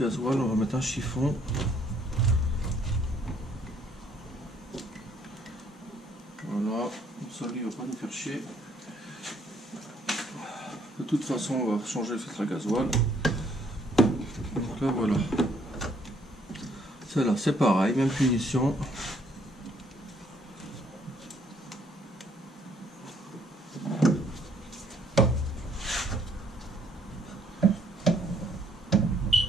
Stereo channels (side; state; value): both; normal; correlation 0.66